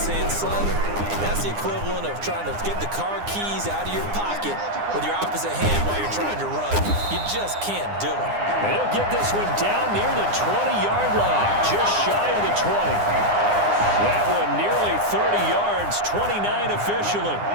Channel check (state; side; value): late; left; 9.8 ms